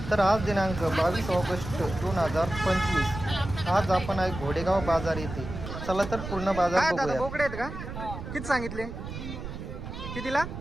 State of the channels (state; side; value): noise; right; rumble, 8 dB below the sound